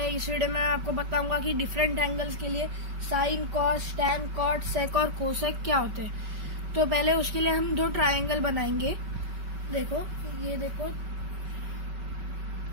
इस वीडियो में आपको बताऊंगा कि डिफरेंट एंगल्स के लिए साइन, कॉस, टैन, कॉट, सेक और कोसेक क्या होते हैं। तो पहले उसके लिए हम दो ट्रायंगल बनाएंगे। देखो, ये देखो,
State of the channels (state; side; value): late; left; 5.3 ms